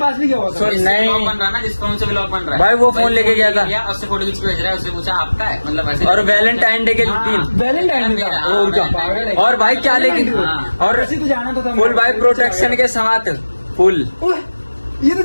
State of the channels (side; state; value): both; inverted; correlation -1.00